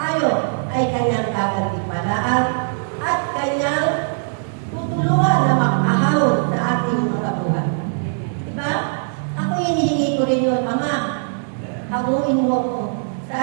ay kanyang gagantimpalaan at kanyang tutulungan na makahawon sa ating mga buhay. Diba? Ako hinihingi ko rin yun, Ama, hamuin mo ko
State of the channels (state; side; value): silent; left; digital silence